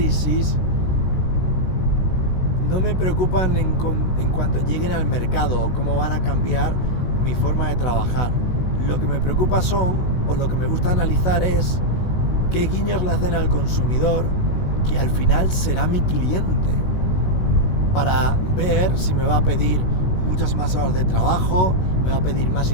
no me preocupan en cuanto lleguen al mercado o cómo van a cambiar mi forma de trabajar. Lo que me preocupa o lo que me gusta analizar es qué guiños le hacen al consumidor, que al final será mi cliente, para ver si me va a pedir muchas más horas de trabajo, me va a pedir más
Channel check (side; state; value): right; late; 16 ms